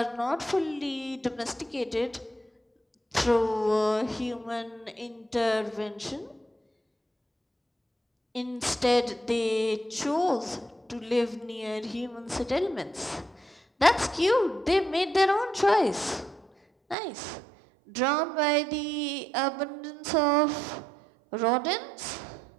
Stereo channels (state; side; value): drops out; left; at 16.9 s